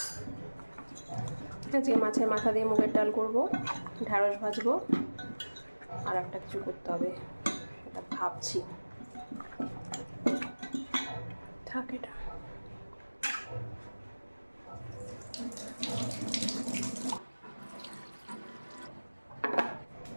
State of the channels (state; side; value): inverted; both; correlation -1.00